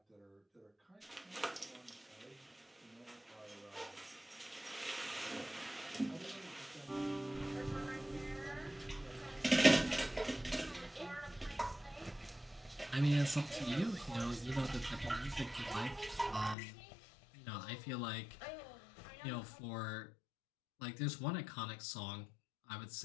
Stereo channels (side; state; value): right; drops out; at 16.6 s